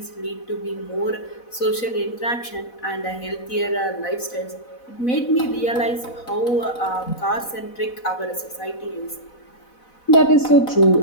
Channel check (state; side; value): late; right; 4.0 ms